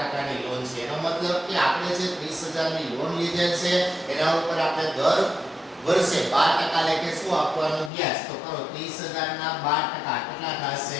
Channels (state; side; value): drops out; right; at 7.9 s